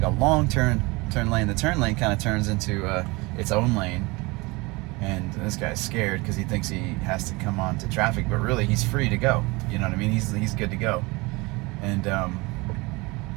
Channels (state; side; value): quieter; left; 24.6 dB